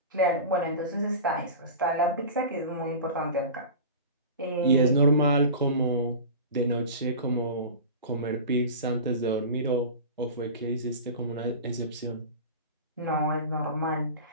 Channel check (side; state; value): both; inverted; correlation -0.32